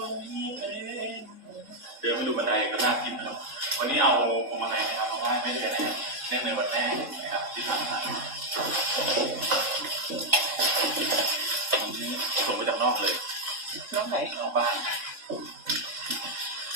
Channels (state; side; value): late; left; 3.7 ms